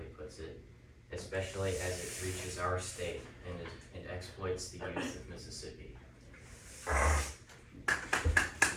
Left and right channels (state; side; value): identical; both; correlation 1.00